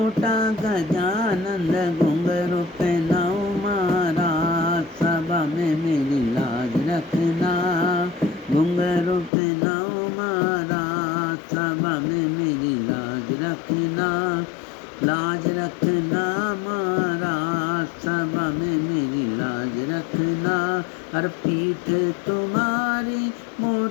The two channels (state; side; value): drops out; right; at 9.3 s